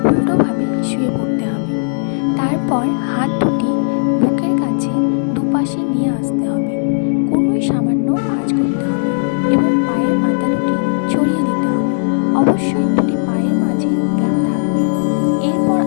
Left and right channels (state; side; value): silent; right; 58 dB below the other